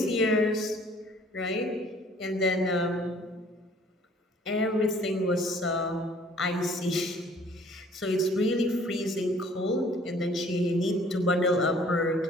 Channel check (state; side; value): normal; both; correlation 0.56